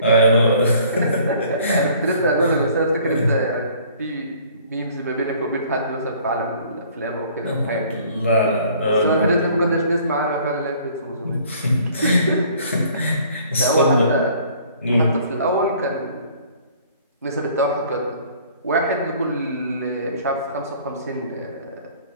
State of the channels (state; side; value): inverted; both; correlation -0.55